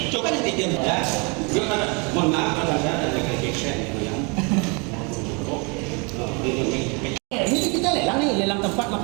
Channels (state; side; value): quieter; left; 32.0 dB